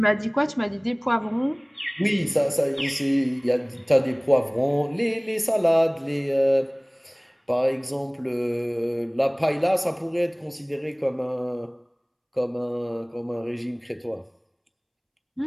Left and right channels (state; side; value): identical; both; correlation 1.00